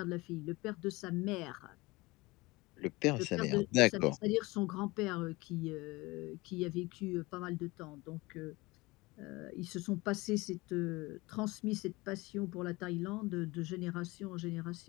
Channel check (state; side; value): quieter; right; 22.5 dB